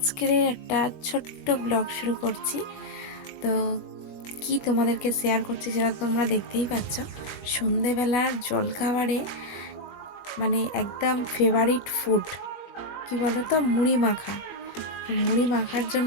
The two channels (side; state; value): right; late; 21 ms